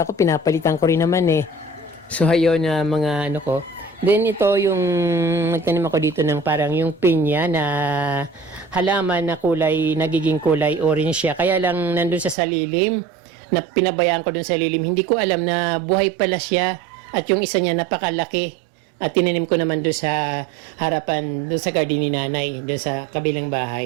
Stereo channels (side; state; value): left; drops out; at 12.4 s